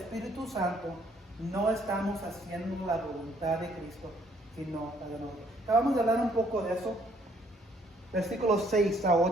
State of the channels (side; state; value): both; normal; correlation 0.65